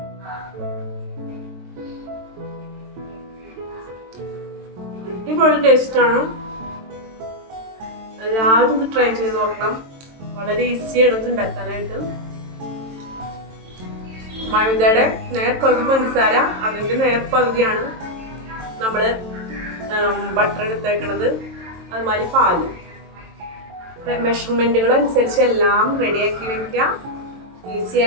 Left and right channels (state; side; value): late; left; 22 ms